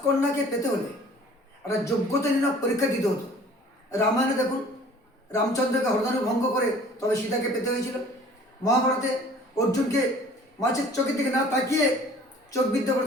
পেতে হলে একটা যোগ্যতা নির্ণয় পরীক্ষা দিতে হতো। রামায়ণে দেখুন, রামচন্দ্রকে হরধনু ভঙ্গ করে তবে সীতাকে পেতে হয়েছিল। মহাভারতে অর্জুনকে মাছের চোখের দিকে না তাকিয়ে চোখ বিদ্ধ করে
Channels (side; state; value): both; normal; correlation 0.50